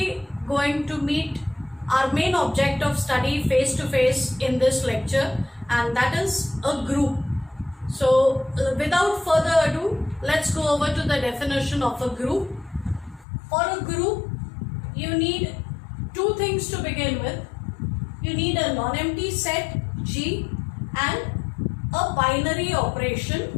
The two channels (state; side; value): drops out; right; at 13.2 s